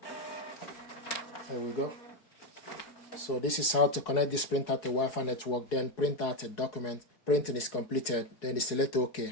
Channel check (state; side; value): late; right; 4.7 ms